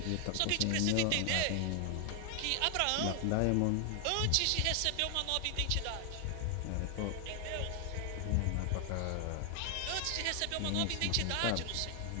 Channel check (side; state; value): both; different; correlation 0.00